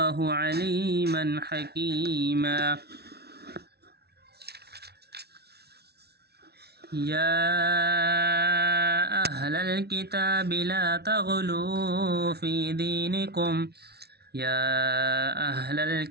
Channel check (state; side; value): late; left; 0.48 ms